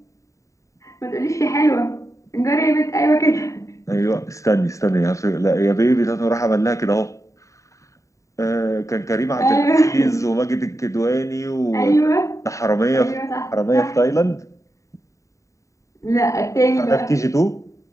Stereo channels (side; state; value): right; late; 0.15 ms